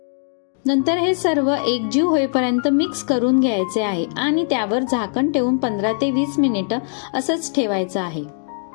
नंतर हे सर्व एकजीव होईपर्यंत मिक्स करून घ्यायचे आहे आणि त्यावर झाकण ठेवून 15 ते 20 मिनिटं असंच ठेवायचं आहे.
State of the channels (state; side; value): silent; right; digital silence